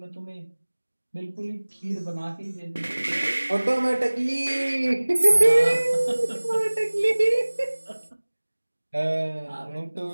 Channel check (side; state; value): both; inverted; correlation -1.00